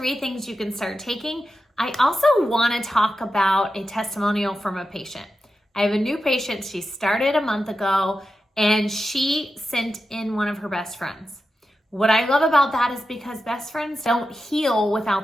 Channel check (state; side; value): normal; both; correlation 0.90